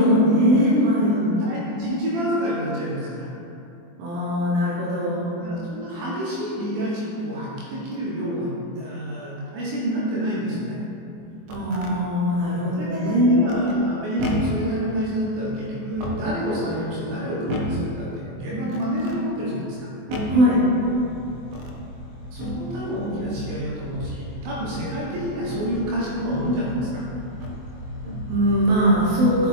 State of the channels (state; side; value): late; left; 23 ms